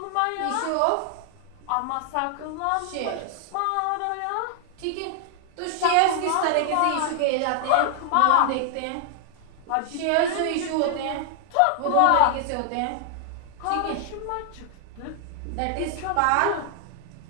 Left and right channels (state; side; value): different; both; correlation 0.00